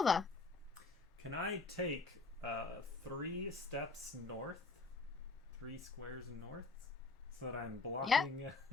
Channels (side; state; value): right; quieter; 3.8 dB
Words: Can I take 3 steps north? 3 squares north? So that I'm blocking